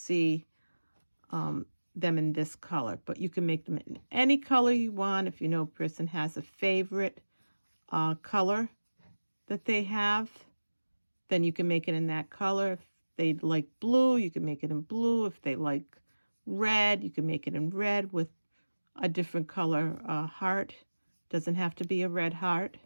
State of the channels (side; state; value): both; inverted; correlation -1.00